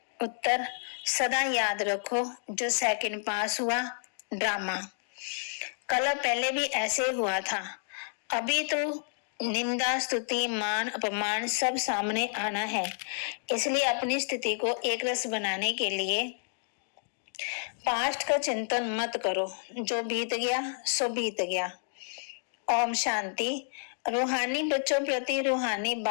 उत्तर, सदा याद रखो जो सेकंड पास हुआ ड्रामा। कल पहले भी ऐसे हुआ था, अभी तो निंदा स्तुति मान अपमान सब सामने आना है। इसलिए अपनी स्थिति को एक रस बनाने के लिए पास्ट का चिंतन मत करो, जो बीत गया सो बीत गया। ओम शांति। रूहानी बच्चों प्रति रूहानी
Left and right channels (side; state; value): right; silent; digital silence